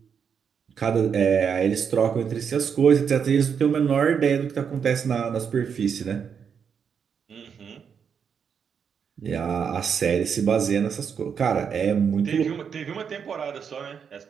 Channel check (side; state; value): left; quieter; 7.0 dB